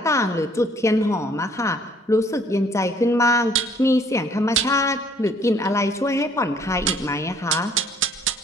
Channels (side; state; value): both; normal; correlation 0.60